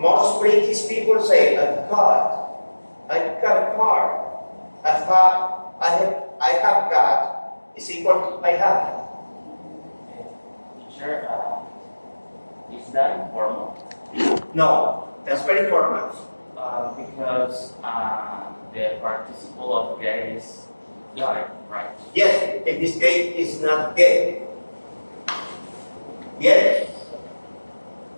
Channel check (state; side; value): inverted; both; correlation -1.00